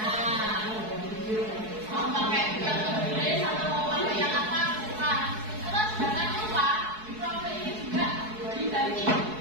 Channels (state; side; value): late; left; 4.7 ms